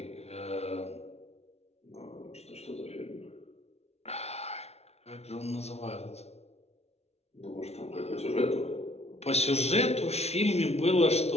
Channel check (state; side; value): late; right; 0.31 ms